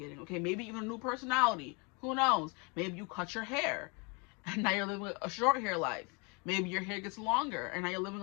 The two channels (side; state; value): right; quieter; 31.5 dB